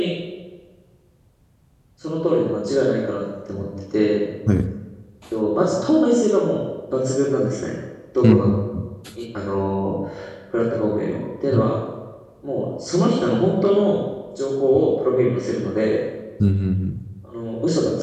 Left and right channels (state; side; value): identical; both; correlation 1.00